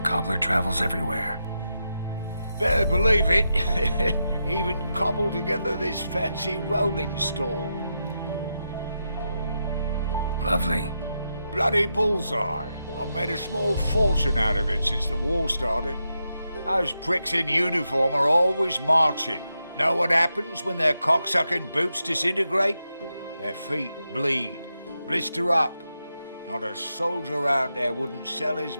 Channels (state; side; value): inverted; both; correlation -0.86